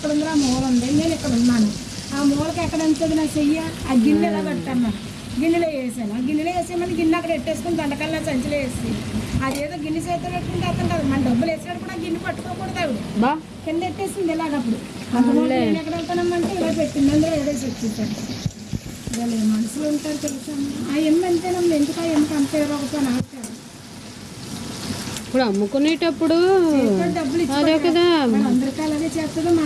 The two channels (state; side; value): identical; both; correlation 1.00